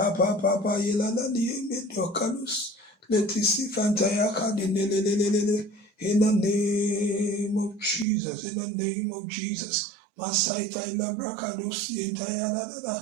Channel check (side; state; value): left; drops out; at 8.1 s